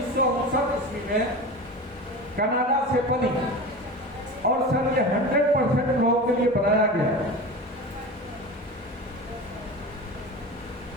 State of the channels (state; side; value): normal; both; correlation 0.30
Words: ईस्वी में कनाडा से बनी, और सर ये 100% लोगों के लिए बनाया गया।